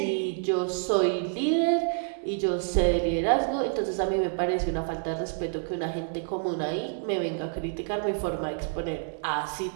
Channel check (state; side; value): silent; left; 59 dB below the other